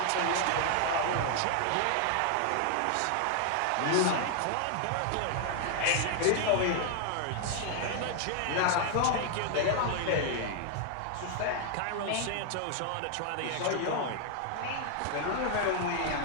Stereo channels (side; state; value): both; different; correlation 0.00